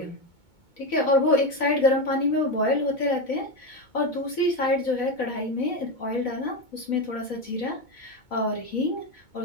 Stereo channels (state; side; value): late; right; 2.2 ms